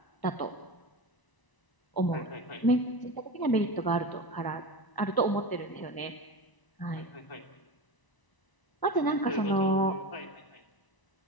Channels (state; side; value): late; right; 1.0 ms